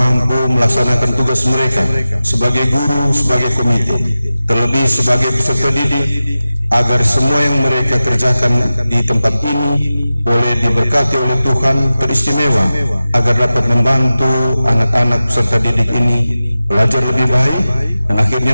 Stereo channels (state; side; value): inverted; both; correlation -0.95